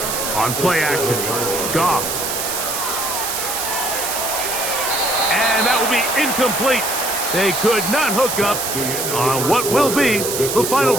On play action, Goff. And that will be incomplete. They could not hook up on what will be the final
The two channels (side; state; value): right; noise; hiss, 3 dB below the sound